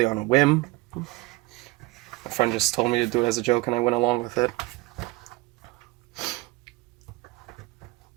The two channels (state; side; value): quieter; left; 21.8 dB